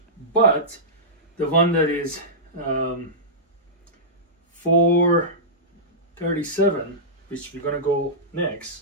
But the one that is $437, which we're gonna go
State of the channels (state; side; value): normal; both; correlation -0.16